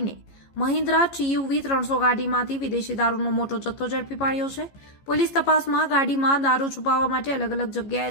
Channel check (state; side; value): late; right; 15 ms